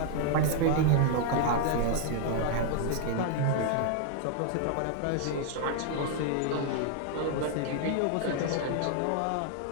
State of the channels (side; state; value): both; different; correlation 0.00